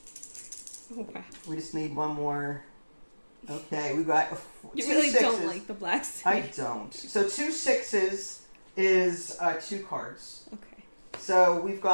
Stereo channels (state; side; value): inverted; both; correlation -1.00